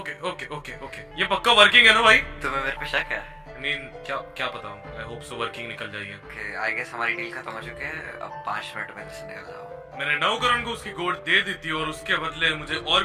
ये पक्का वर्किंग है ना भाई? तुम्हें मेरे पे शक है? नहीं, क्या पता हूँ, आई होप सो वर्किंग निकल जाएगी। ओके, आई गेस हमारी डील खत्म हो चुकी है, अब 5 मिनट में से निकल जाओ। मैंने नवकरण को उसकी गोट दे दी थी और उसके बदले मुझे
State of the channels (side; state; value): both; identical; correlation 1.00